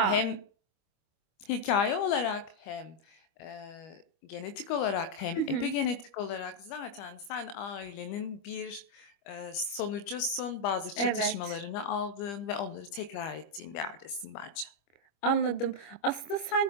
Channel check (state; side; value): late; right; 25 ms